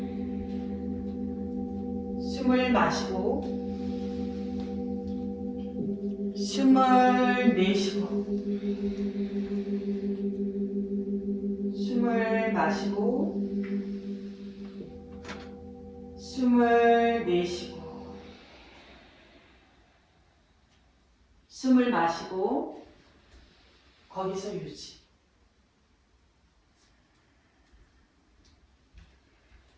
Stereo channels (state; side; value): identical; both; correlation 1.00